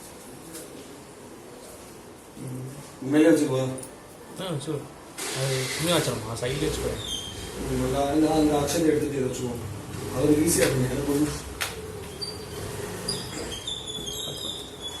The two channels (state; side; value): identical; both; correlation 1.00